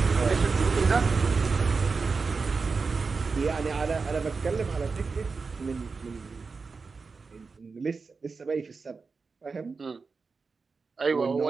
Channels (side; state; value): left; quieter; 4.6 dB